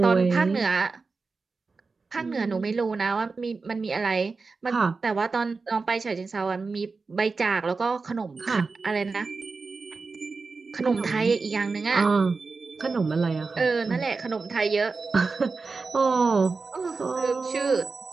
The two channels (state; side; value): quieter; left; 4.3 dB